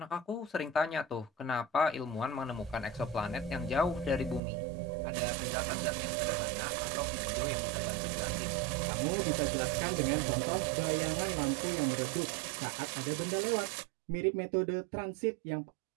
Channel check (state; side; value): drops out; left; at 4.4 s